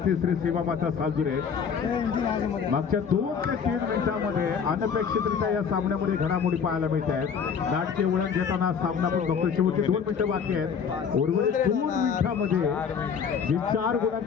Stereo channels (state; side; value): quieter; right; 6.7 dB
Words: श्री सीमामाता सालदुरे मागच्या 2 ते 3 मिनिटांमध्ये अनपेक्षितरित्या या सामन्यामध्ये घडामोडी पाहायला मिळत आहेत. नाटकीय वळण घेताना सामना पण बघतो. शेवटचे 2 मिनिटं बाकी आहेत. उर्वरित 2 मिनिटांमध्ये जी 4